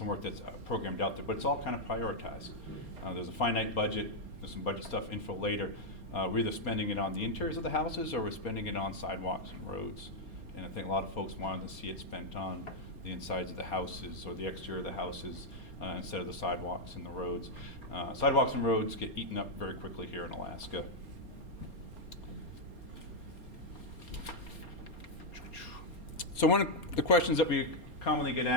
work that's programmed out there, but it's all kind of prioritized. There's a finite budget, there's some budget stuff info later. We're either spending it on the interiors of the houses or we're spending it on sidewalks and roads. And I think a lot of folks wanted to see it spent on the insides of the houses or the exterior of the houses instead of the sidewalks and the roads. Sidewalks and roads get eaten up very quickly here in Alaska. So one of the questions that we commonly get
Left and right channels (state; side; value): late; right; 4.3 ms